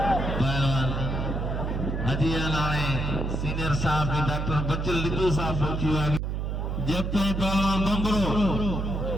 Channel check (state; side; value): noise; right; hum, 2 dB below the sound